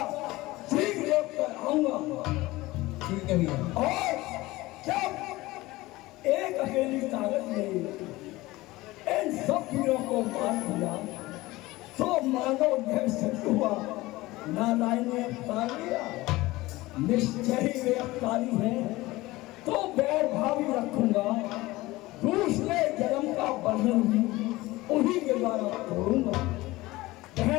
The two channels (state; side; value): quieter; right; 19.5 dB